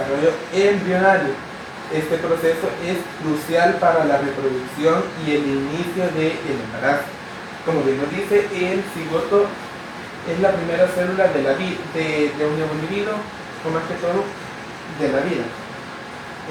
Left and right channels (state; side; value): identical; both; correlation 1.00